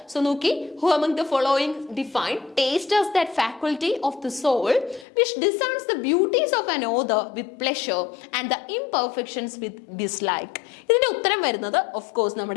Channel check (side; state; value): right; drops out; at 5.1 s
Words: സോ നോക്കി, who among the following define taste as that faculty of the soul which discerns the beauties of an author with pleasure and the imperfections with dislike? ഇതിന്റെ ഉത്തരം വരുന്നത് of course